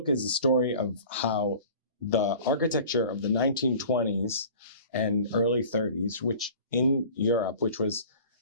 is the story of how the architecture of the 1920s and early 30s, which in Europe, which was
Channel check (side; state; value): both; inverted; correlation -0.44